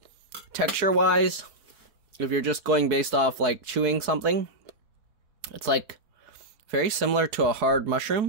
texture-wise, if you're just going based off like chewing something, it's like very similar to a hard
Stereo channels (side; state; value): left; late; 4.7 ms